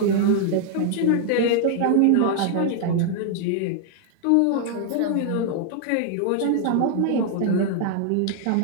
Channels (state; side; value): different; both; correlation 0.00